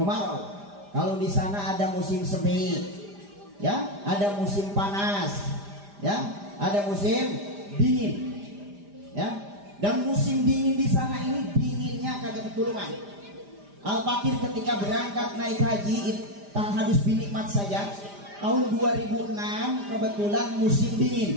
Kalau di sana ada musim semi, ya, ada musim panas, ya, ada musim dingin, ya. Dan musim dingin di sana ini dinginnya kagak ketulungan. Al-Fakir ketika berangkat naik haji harus binikmat saja. Tahun 2006 kebetulan musim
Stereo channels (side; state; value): left; late; 5.0 ms